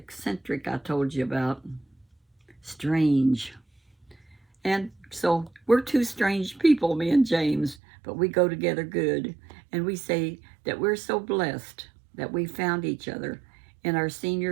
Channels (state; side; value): drops out; left; at 7.8 s